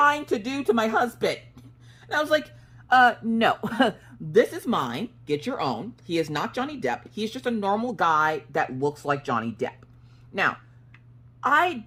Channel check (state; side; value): identical; both; correlation 1.00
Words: to do to my husband. And I was like, no, this is mine. Get your own. He is not Johnny Depp. He's just a normal guy that looks like Johnny Depp. Now, I